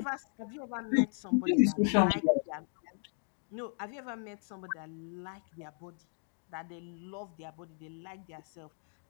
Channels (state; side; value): silent; right; 54 dB below the other